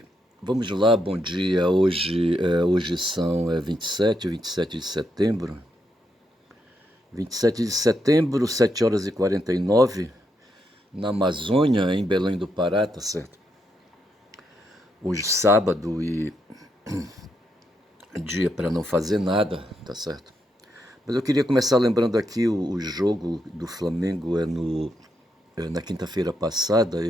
Vamos lá, bom dia. Hoje são 27 de setembro. 27 de setembro, 7 horas e 49, na Amazônia, em Belém do Pará, tá certo? Hoje sábado e dia para não fazer nada, tá certo? Mas eu queria começar lembrando aqui o jogo do Flamengo na quinta-feira passada.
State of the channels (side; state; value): both; normal; correlation 0.80